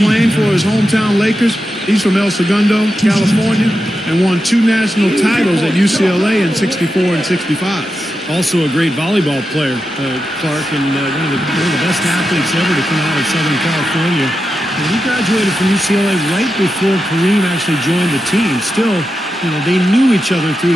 for his hometown Lakers. He's from El Segundo, California, and won 2 national titles at UCLA in '64 and '65. Also a great volleyball player, Clark, and one of the best athletes ever to come out of Southern California. And he graduated from UCLA right before Kareem actually joined the team. Still, you know, they knew each other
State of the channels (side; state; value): both; normal; correlation 0.89